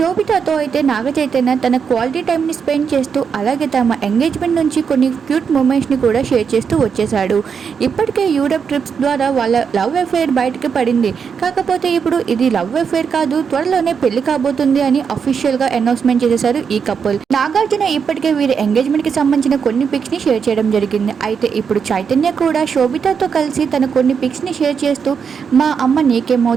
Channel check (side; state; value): left; quieter; 6.5 dB